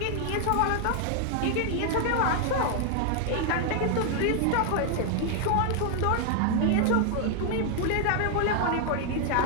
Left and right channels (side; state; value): both; different; correlation 0.00